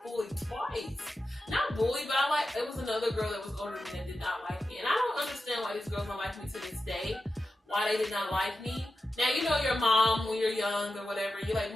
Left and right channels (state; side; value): normal; both; correlation 0.91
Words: bullied twice. Not bullied, but it was another girl that was older than me that did not like me. And I don't understand why these girls don't like me to this day. Why they did not like me. Now, your mom when you're young or whatever. You're like,